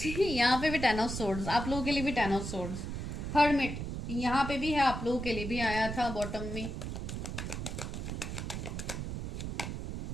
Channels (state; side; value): noise; right; rumble, 5 dB below the sound